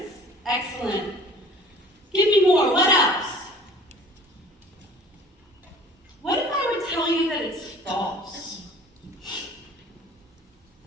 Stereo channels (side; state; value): both; normal; correlation 0.47